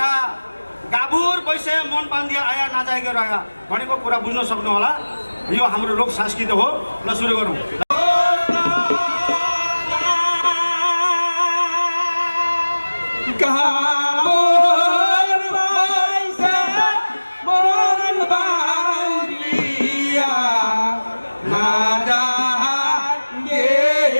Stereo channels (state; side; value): inverted; both; correlation -1.00